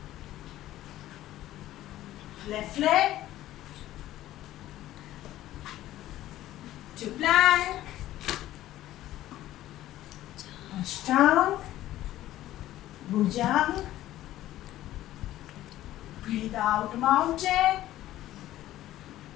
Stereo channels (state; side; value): quieter; right; 14.3 dB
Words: Left leg. To plank. Ashtanga. Bhujang. Breathe out, mountain.